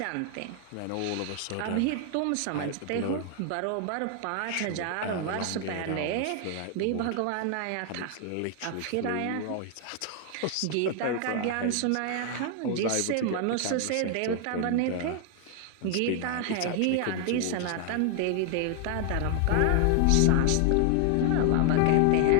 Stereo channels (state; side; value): different; both; correlation 0.00